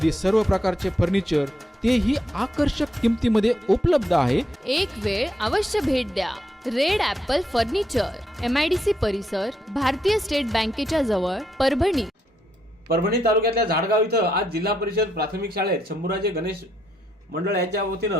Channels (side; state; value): both; normal; correlation 0.78